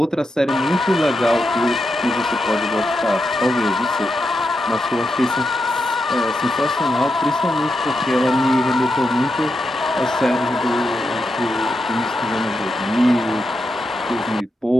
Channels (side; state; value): both; normal; correlation 0.85